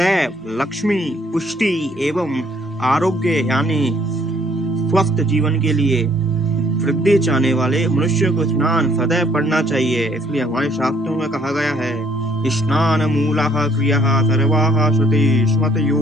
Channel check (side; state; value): both; normal; correlation 0.64